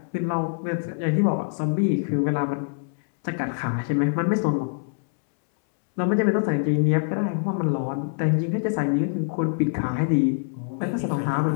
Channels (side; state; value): right; silent; 62 dB below the other